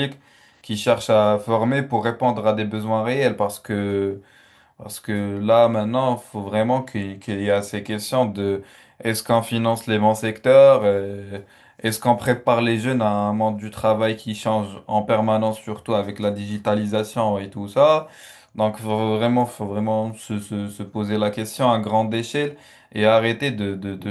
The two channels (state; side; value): identical; both; correlation 1.00